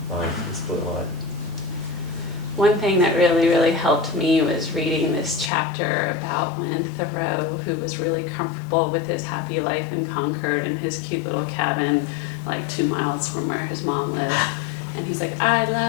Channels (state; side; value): drops out; right; at 5.5 s